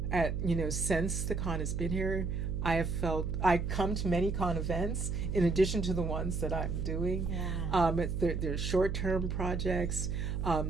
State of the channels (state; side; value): noise; right; hum, 2 dB below the sound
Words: since the Kahn has been here, I come to many Kahn events in addition to the ones that I'm doing. There's short-term projects.